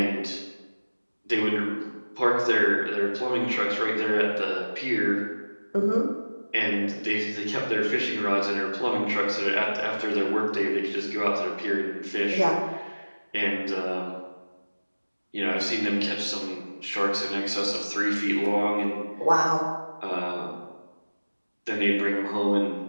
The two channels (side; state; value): both; inverted; correlation -1.00